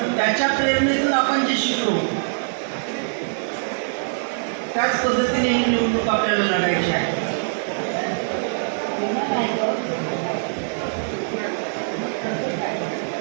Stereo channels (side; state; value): left; silent; digital silence